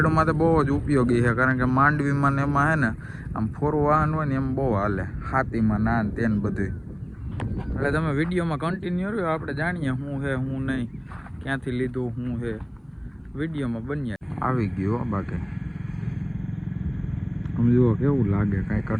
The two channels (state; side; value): identical; both; correlation 1.00